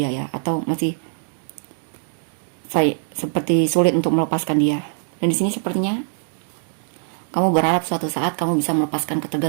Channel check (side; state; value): left; silent; digital silence